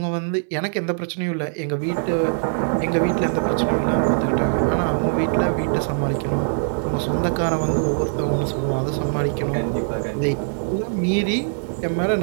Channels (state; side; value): silent; left; 59 dB below the other